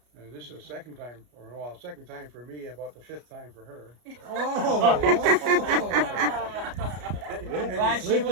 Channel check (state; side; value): late; left; 33 ms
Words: And this is the second time for me, about the fifth time for her. Glad she